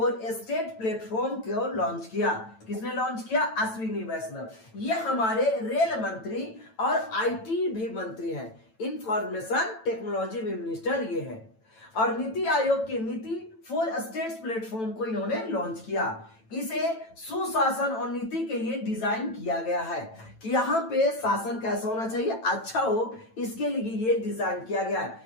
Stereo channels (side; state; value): right; late; 9.0 ms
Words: स्टेट प्लेटफॉर्म को लॉन्च किया। किसने लॉन्च किया। अश्विनी वैष्णव। ये हमारे रेल मंत्री और आईटी भी मंत्री हैं। इंफॉर्मेशन टेक्नोलॉजी मिनिस्टर ये है। और नीति आयोग के नीति फॉर स्टेट्स प्लेटफॉर्म को इन्होंने लॉन्च किया। इसे सुशासन और नीति के लिए डिजाइन किया गया है कि यहाँ पे शासन कैसा होना चाहिए, अच्छा हो, इसके लिए ये डिजाइन किया गया